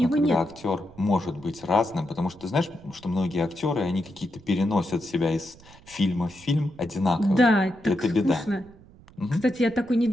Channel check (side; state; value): right; noise; rumble, 23 dB below the sound